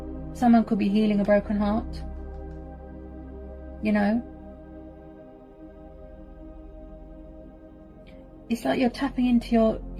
someone could be healing a broken heart. You know, it's like you're tapping into your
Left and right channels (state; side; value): identical; both; correlation 1.00